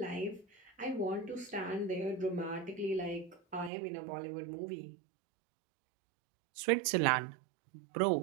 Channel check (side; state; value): left; drops out; at 3.7 s